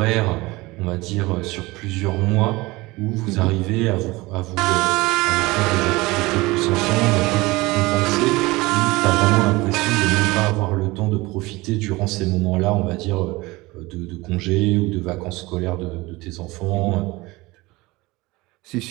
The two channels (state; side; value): quieter; left; 21.6 dB